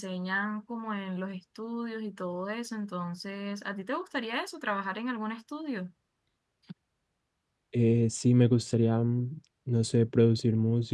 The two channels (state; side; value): identical; both; correlation 1.00